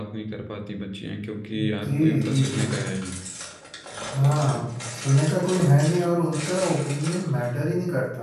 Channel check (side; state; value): both; identical; correlation 1.00